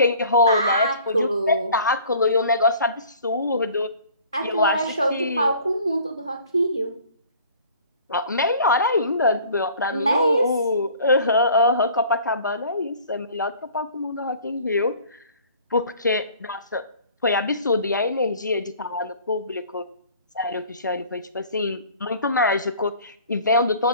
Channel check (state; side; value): inverted; both; correlation -0.50